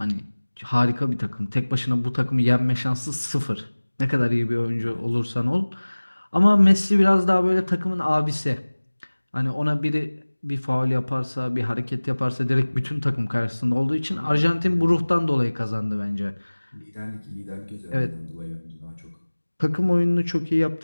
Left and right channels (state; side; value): inverted; both; correlation -1.00